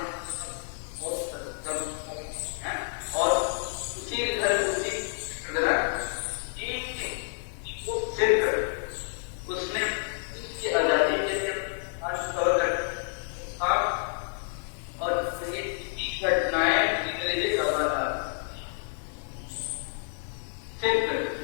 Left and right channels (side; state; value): right; silent; digital silence